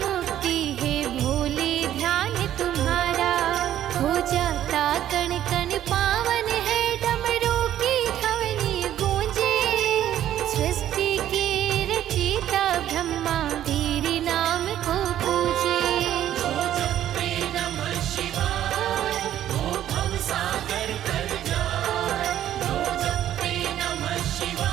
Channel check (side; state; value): left; quieter; 11.7 dB